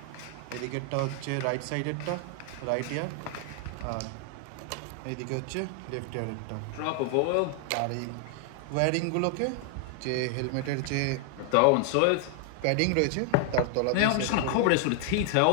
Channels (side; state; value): both; different; correlation 0.00